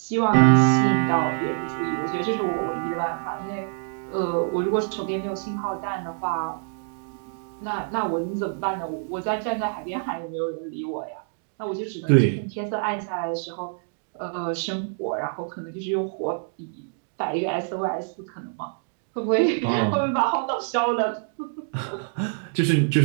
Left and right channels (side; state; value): left; silent; digital silence